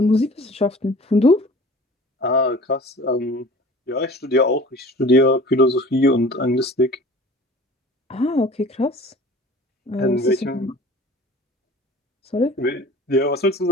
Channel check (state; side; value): normal; both; correlation 0.44